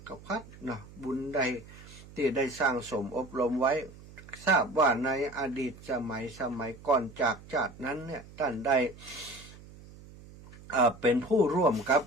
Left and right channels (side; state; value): right; noise; hum, 19 dB below the sound